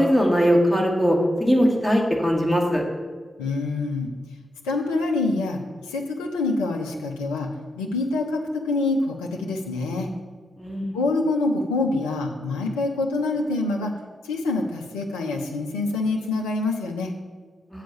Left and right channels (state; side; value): normal; both; correlation 0.79